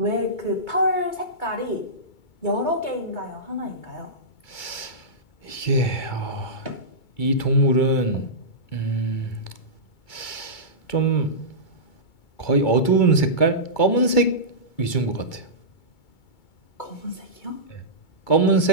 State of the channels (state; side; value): late; right; 2.3 ms